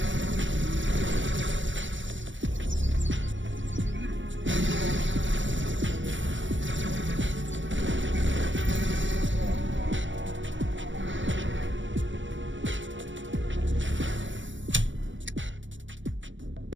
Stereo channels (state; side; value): late; left; 0.55 ms